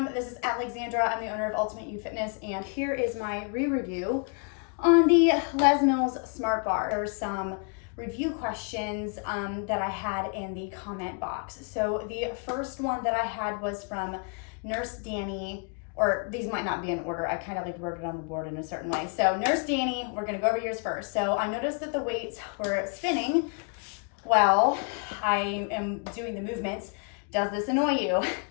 this is Alexandra. I'm the owner of Ultimate U Fitness, and here is my re-review on the Les Mills Smart Bar. There's some review questions that I had in the comment box. So the first one that I had was from Nurse Danny, or these might not be in order. I kind of like wrote it on the board in a certain way. So Nurse Danny, we're gonna go over yours first. So I noticed that the weights were spinning while I am doing the movements. Does this annoy you?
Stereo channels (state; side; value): quieter; right; 39.9 dB